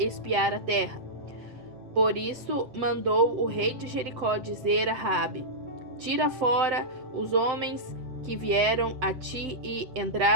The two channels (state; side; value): late; left; 7.8 ms